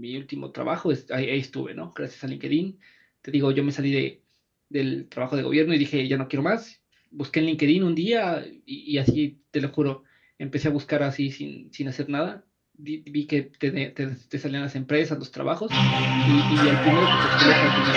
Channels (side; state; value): both; identical; correlation 1.00